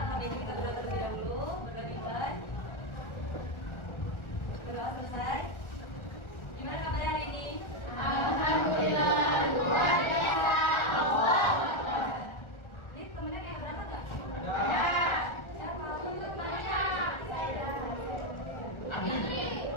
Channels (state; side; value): late; right; 1.4 ms